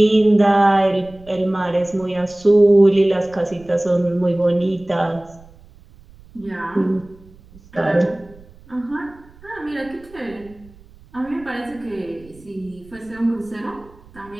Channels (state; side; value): noise; right; rumble, 24 dB below the sound